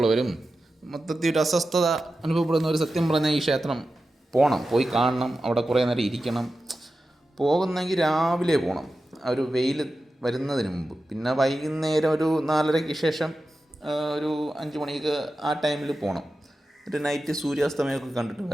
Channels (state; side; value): normal; both; correlation 0.93